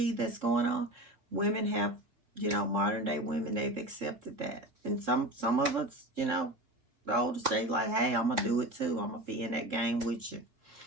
that's going on, women have, modern day women, they've accepted that. And some of us, the older say like, hey, I'm gonna do it too. I'm gonna be in that game with you.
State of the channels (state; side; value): late; left; 3.7 ms